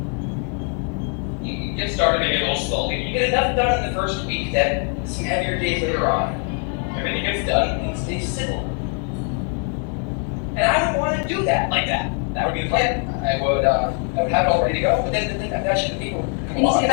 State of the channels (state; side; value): quieter; right; 39.6 dB